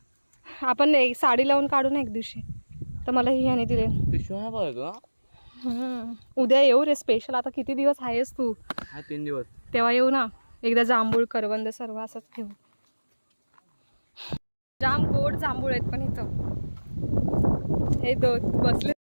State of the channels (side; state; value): both; inverted; correlation -1.00